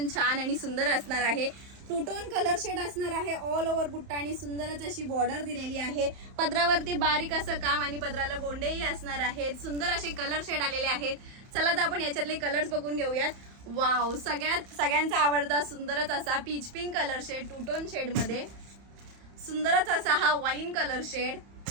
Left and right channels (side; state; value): left; late; 31 ms